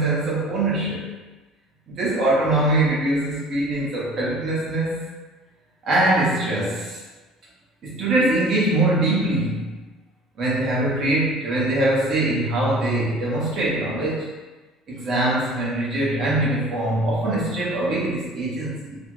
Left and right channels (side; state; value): both; normal; correlation 0.45